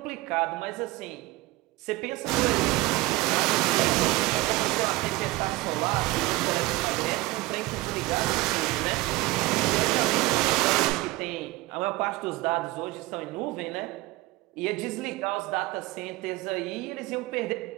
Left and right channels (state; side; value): quieter; left; 19.8 dB